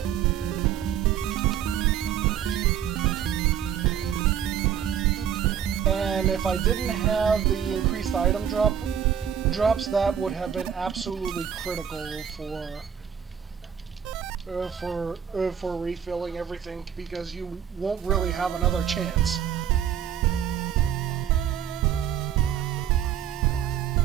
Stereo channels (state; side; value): quieter; left; 9.0 dB